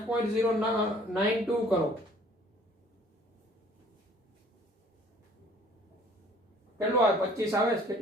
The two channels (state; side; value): normal; both; correlation 0.55